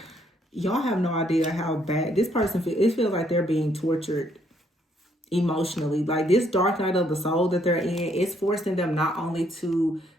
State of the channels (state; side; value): normal; both; correlation 0.70